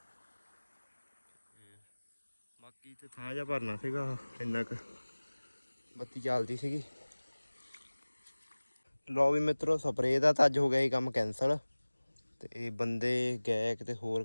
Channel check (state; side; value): inverted; both; correlation -1.00